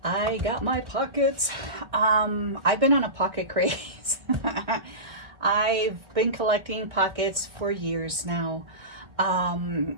I got my pockets. I've been on a pocket craze. I've been collecting pockets for years now.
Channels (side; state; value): left; late; 1.2 ms